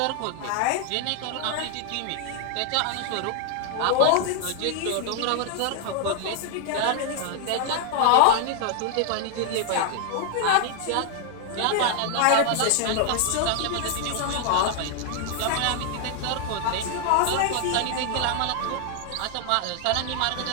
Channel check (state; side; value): different; both; correlation 0.00